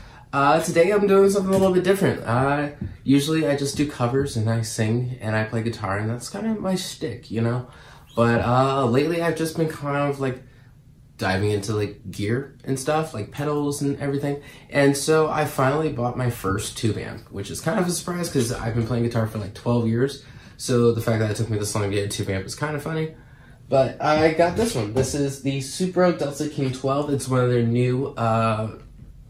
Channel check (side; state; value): both; identical; correlation 1.00